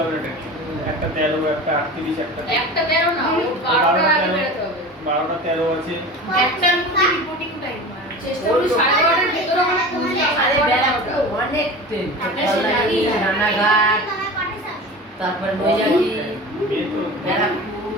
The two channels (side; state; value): both; normal; correlation 0.34